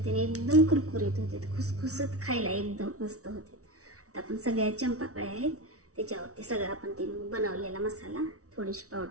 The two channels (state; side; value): late; left; 0.65 ms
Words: एकदम कुरकुरीत होते, खुसखुसीत खायला एकदम मस्त होते. आता आपण सगळ्या चंपाकळ्या आहेत त्याच्यावरती सगळं आपण ते बनवलेला मसाला, थोडीशी